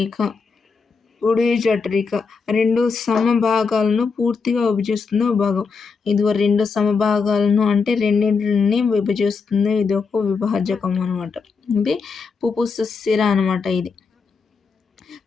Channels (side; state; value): right; quieter; 5.0 dB